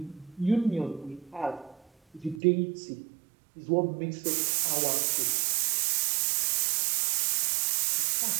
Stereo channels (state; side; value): drops out; left; at 2.4 s